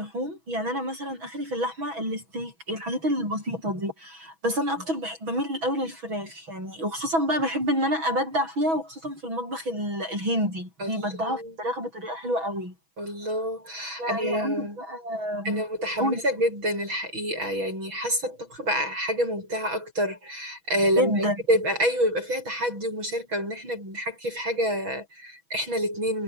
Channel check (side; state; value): left; late; 6.2 ms